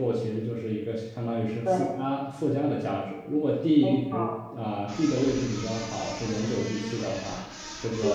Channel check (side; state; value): both; identical; correlation 1.00